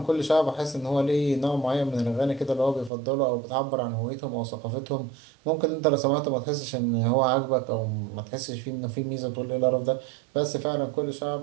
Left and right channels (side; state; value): left; drops out; at 2.9 s